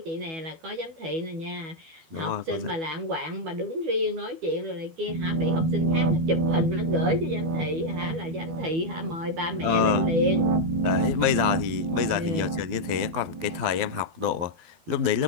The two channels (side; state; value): left; late; 12 ms